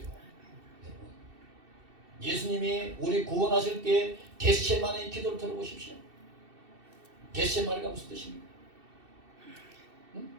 예수님이 우리 구원하실 때 겟세마네의 기도를 들어보십시오. 겟세마네가 무슨 뜻입니까?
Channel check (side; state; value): left; late; 2.7 ms